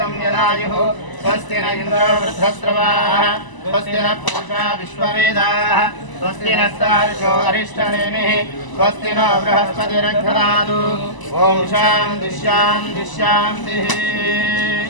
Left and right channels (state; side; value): late; right; 1.0 ms